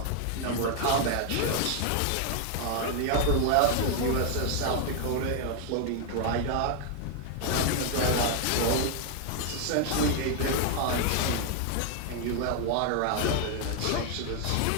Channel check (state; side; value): different; both; correlation 0.00